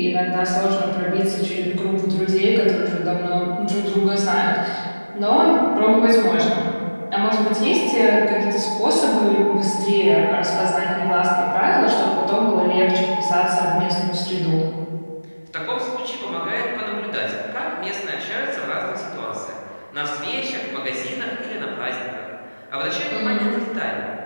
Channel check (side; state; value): both; inverted; correlation -1.00